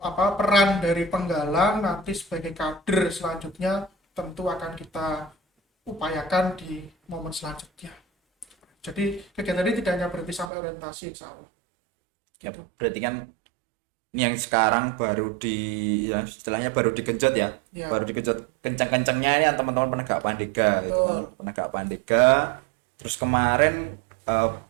peran dari penggalang nanti sebagai kader selanjutnya tentu akan kita upayakan di momen selanjutnya. Jadi kegiatan ini tidak hanya berhenti sampai orientasi, insya Allah. Ya, berarti kan ini yang sekarang baru ya istilahnya baru digenjot ya. Ya. Baru digenjot kencang-kencangnya ini yang teman-teman penegak pandega gitu kan. Betul. Penegak pandega. Terus kemarin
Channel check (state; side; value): drops out; left; at 10.5 s